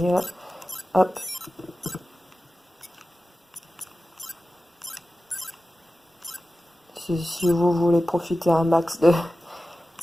Hop. Si vous voulez profiter un max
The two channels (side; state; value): both; normal; correlation 0.95